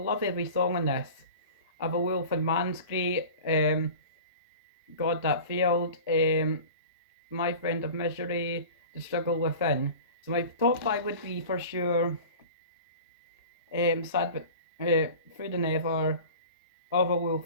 every song on this. I've a Wolf and Man's great. God That Failed. My Friend of Misery. The Struggle Within. So my top 5 would be for sure Sad but Through the Never, Of a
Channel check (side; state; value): both; inverted; correlation -0.39